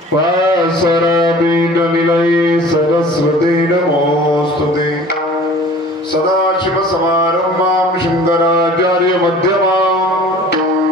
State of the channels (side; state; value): both; normal; correlation 0.46